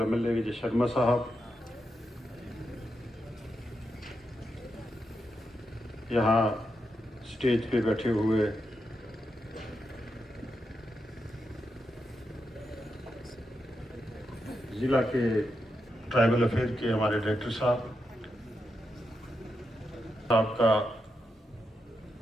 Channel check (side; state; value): both; normal; correlation 0.85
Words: MLA विजय शर्मा साहब, यहाँ स्टेज पे बैठे हुए ज़िला के ट्राइबल अफेयर के हमारे डायरेक्टर साहब का